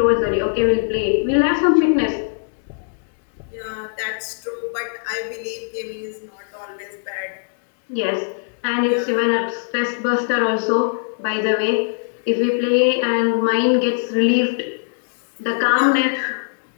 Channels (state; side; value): silent; right; digital silence